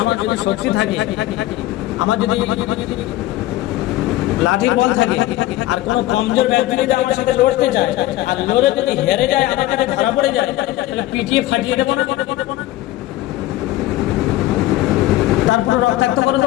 যদি শক্তি থাকে, আমার যদি লাঠির বল থাকে আর কোন কমজোর ব্যক্তি যদি আমার সাথে লড়তে যায় আর লড়ে যদি হেরে যায়, আমার কাছে ধরা পড়ে যায়, তাহলে পিটিয়ে ফাটিয়ে দেবো না, তারপরে রক্তাক্ত করে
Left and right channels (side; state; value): right; quieter; 15.8 dB